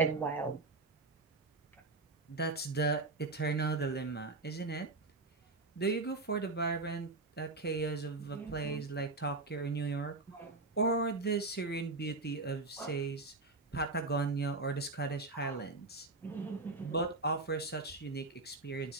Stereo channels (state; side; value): quieter; left; 3.4 dB